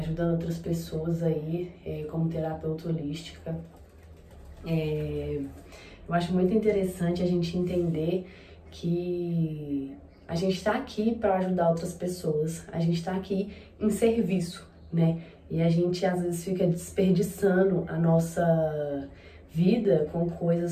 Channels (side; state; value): both; identical; correlation 1.00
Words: outras pessoas aí, como terapeuta holística. Eu acho muito interessante a gente entender que a gente está aqui para ajudar outras pessoas, a gente está aqui em serviço, né? E a gente às vezes fica desperdiçando a nossa vida com